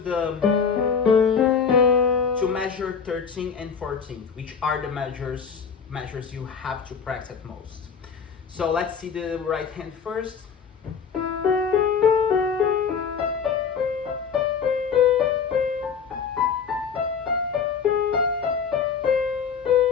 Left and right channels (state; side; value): quieter; right; 6.3 dB